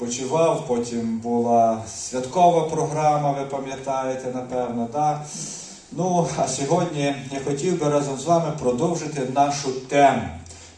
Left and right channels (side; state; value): both; identical; correlation 1.00